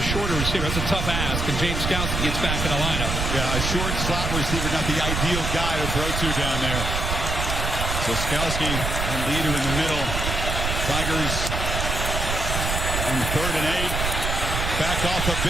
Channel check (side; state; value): right; noise; rumble, 2 dB below the sound